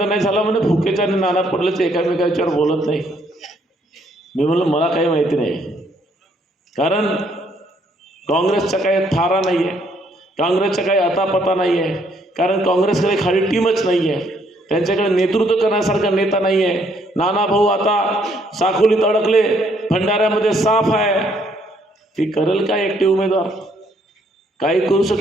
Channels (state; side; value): normal; both; correlation 0.68